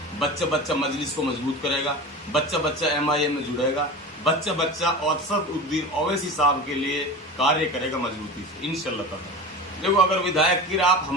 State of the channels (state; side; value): normal; both; correlation 0.31